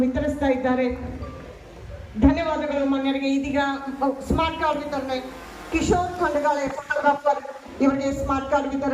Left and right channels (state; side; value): identical; both; correlation 1.00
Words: ವಿತರಿಸ್ತಾ ಇದ್ದಾರೆ. ಧನ್ಯವಾದಗಳು ಮಾನ್ಯರಿಗೆ. ಇದೀಗ ಸ್ಮಾರ್ಟ್ ಕಾರ್ಡ್ ವಿತರಣೆ. ಕಿಶೋರ್ ಖಂಡಗಾಳೆ ಫೋಟೋಗ್ರಾಫರ್, ಇವರಿಗೆ ಸ್ಮಾರ್ಟ್ ಕಾರ್ಡ್